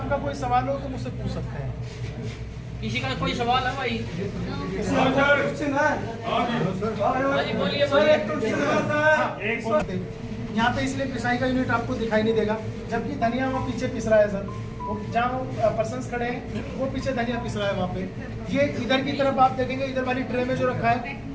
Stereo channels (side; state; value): both; identical; correlation 1.00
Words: कोई सवाल हो तो मुझसे पूछ सकते हैं। किसी का कोई सवाल है भाई? यहाँ पे इसलिए पिसाई का यूनिट आपको दिखाई नहीं देगा, जबकि धनिया वो पीछे पिस रहा है सर, वो जहाँ पर्सन्स खड़े हैं वो पीछे धनिया पिस रहा है वहाँ पे। ये इधर की तरफ आप देखेंगे, इधर वाली ट्रे में जो रखा है